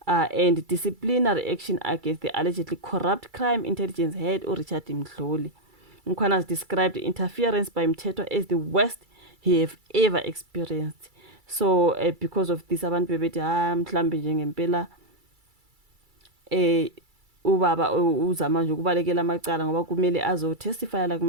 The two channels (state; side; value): late; left; 2.3 ms